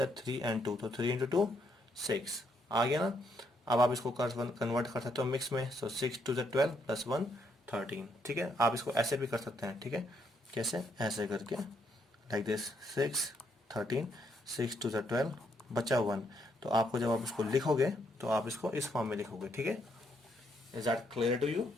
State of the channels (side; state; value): both; normal; correlation 0.74